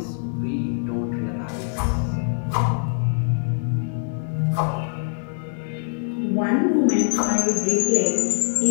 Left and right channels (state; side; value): silent; right; digital silence